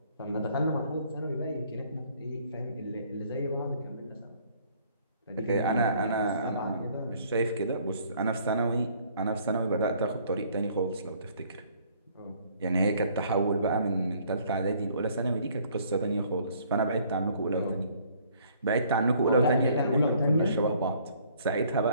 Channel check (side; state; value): both; inverted; correlation -0.61